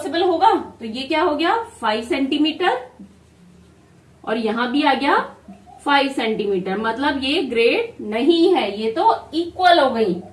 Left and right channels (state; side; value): identical; both; correlation 1.00